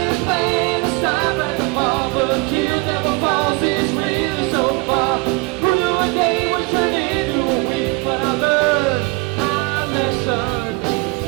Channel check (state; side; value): quieter; left; 26.6 dB